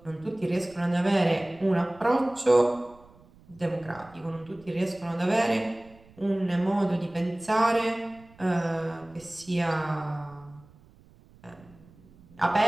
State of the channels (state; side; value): noise; right; rumble, 26 dB below the sound